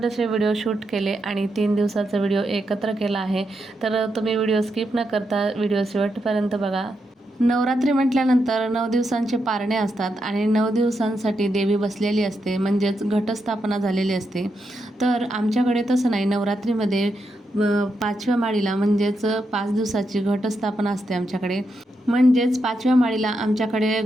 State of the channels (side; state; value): both; normal; correlation 0.84